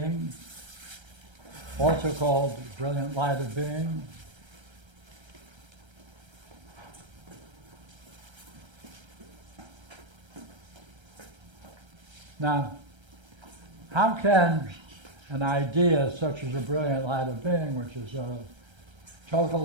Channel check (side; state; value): left; late; 1.3 ms